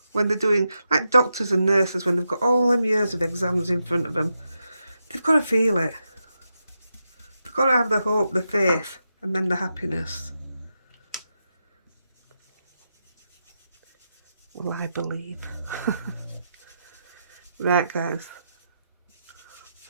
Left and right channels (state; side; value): inverted; both; correlation -0.86